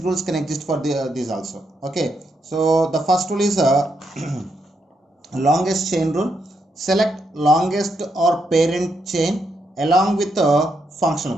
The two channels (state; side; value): normal; both; correlation 0.80